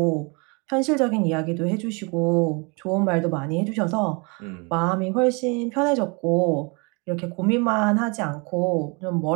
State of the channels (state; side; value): quieter; left; 30.9 dB